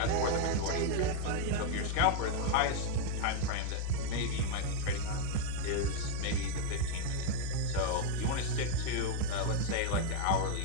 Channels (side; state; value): both; different; correlation 0.01